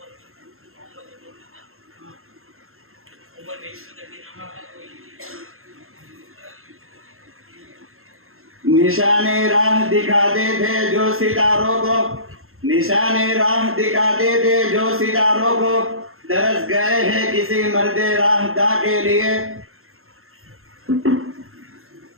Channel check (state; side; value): late; left; 0.62 ms